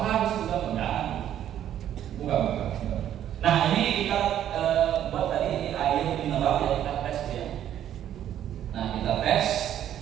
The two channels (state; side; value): quieter; left; 10.9 dB